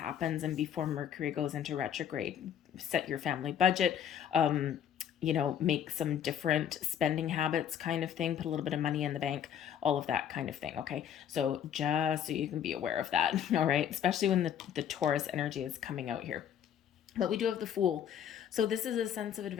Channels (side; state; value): right; quieter; 9.3 dB